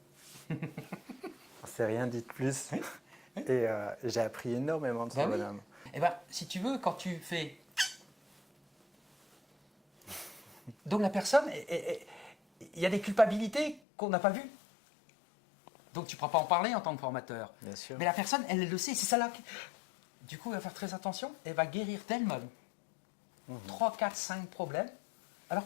On s'est rien dit de plus. Et j'ai appris énormément de ce bonhomme. Eh bien, si tu veux, quand tu fais... Donc la personne, il y a des culpabilités qu'on n'a pas vues. Donc tu ne pourras pas en parler en tant que formateur. Bien sûr. Mais la personne, elle le sait, c'est ça là. Du coup, elle va faire très attention, elle va guérir d'elle-même 3, 4, 5 problèmes, alors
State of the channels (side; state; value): right; drops out; at 13.8 s